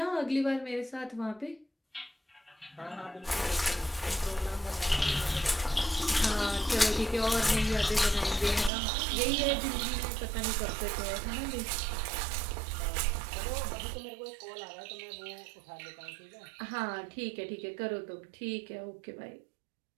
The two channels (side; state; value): left; drops out; at 8.7 s